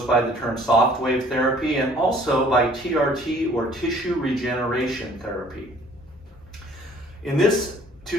by the term Softwave therapy and also by TRT or tissue regeneration therapy. In this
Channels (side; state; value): both; normal; correlation 0.55